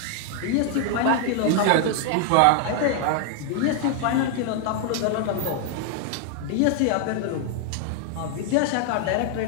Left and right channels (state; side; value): different; both; correlation 0.00